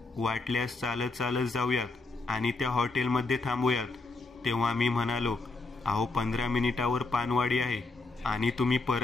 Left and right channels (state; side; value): quieter; right; 3.5 dB